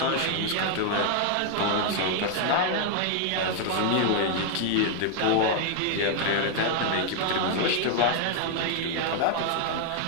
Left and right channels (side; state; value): both; different; correlation 0.00